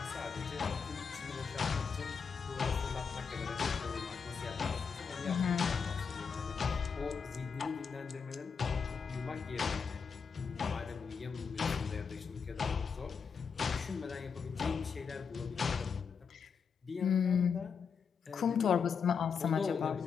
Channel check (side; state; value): right; quieter; 6.0 dB